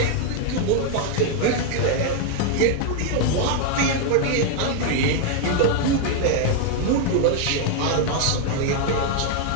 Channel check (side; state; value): both; different; correlation 0.00